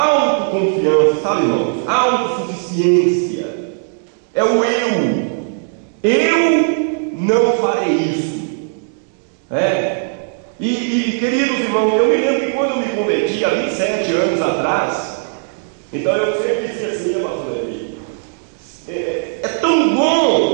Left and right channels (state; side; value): silent; left; digital silence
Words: sabe, irmãos? Autossuficiência é o eu. Eu não farei isso. E queridos irmãos, eu me lembro que quando eu me converti há 27 anos atrás, então eu sempre dizia assim, pastor Levi, é tão